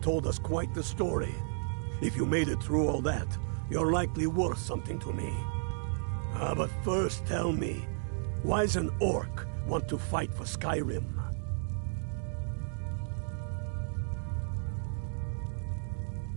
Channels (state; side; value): silent; left; digital silence